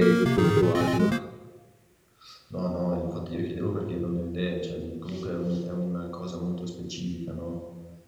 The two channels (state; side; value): identical; both; correlation 1.00